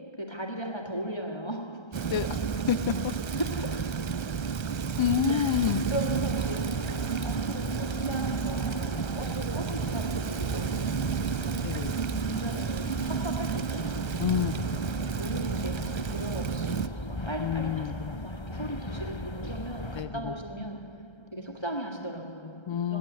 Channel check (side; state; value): right; late; 1.3 ms